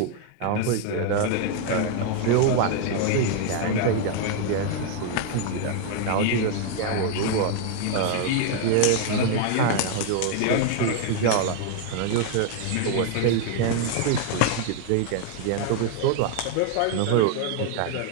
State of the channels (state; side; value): different; both; correlation 0.00